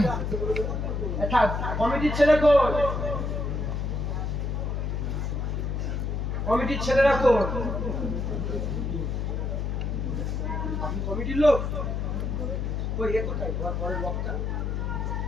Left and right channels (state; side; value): noise; left; hum, 1 dB below the sound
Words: কমিটির ছেলে কই? কমিটির ছেলেরা কই? আপনি কমিটির লোক? কই এ কোথায়? পরের বক্তা